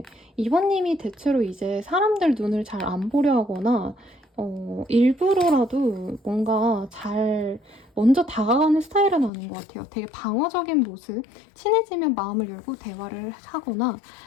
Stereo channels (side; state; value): right; drops out; at 9.3 s